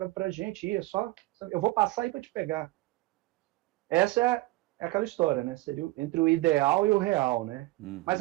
para a gente ir. Eu vou passar aí para te pegar. Essa é aquela história, né? Seria entre o ideal e o real, né? Mas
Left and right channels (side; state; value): left; quieter; 19.6 dB